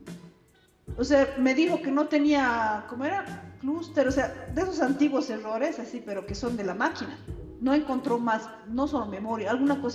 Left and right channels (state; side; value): identical; both; correlation 1.00